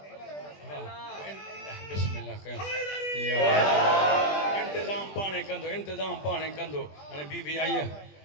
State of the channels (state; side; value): late; right; 20 ms